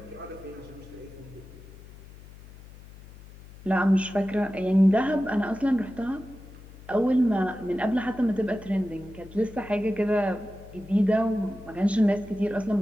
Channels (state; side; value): noise; left; hum, 19 dB below the sound